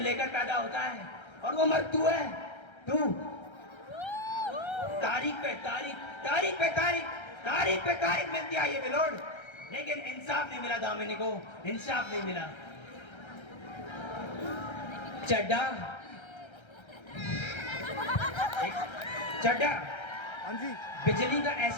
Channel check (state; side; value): late; right; 1.3 ms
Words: पैदा होता है, और वो मर्द तू है, तू। तारीख पे तारीख, तारीख पे तारीख, तारीख पे तारीख मिलती है ये बिलोड, लेकिन इंसाफ नहीं मिला दामिनी को, इंसाफ नहीं मिला। चड्डा चड्डा, हाँ जी, बिजली का